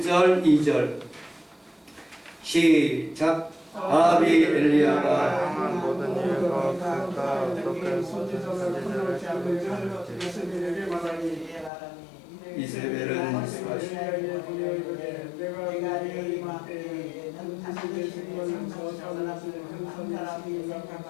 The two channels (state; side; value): drops out; right; at 11.7 s